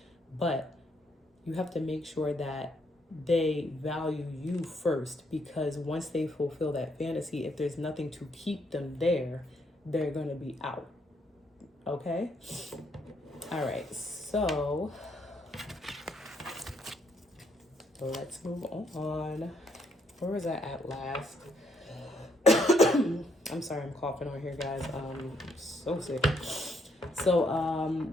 But you have to make sure that they value you first, because once they fulfill that fantasy, if there's nothing to keep them there, they're going to be out. Okay? All right. So let's move on. Where was I at last? I'm sorry, I'm coughing on here, guys. So sick. So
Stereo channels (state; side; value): normal; both; correlation 0.73